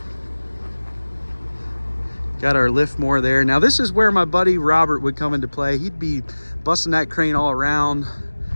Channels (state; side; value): inverted; both; correlation -1.00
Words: Got our Liftmoore there. Now this is where my buddy Robert would come into play. He'd be busting that crane all around.